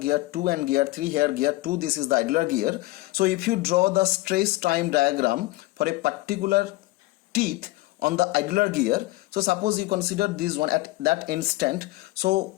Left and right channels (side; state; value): right; quieter; 19.2 dB